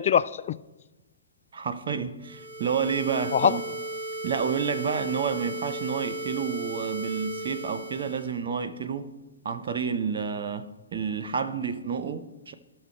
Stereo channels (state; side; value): inverted; both; correlation -0.37